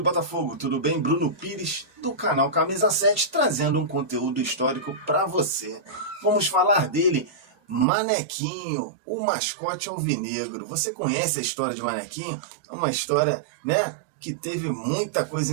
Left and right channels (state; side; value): drops out; left; at 7.9 s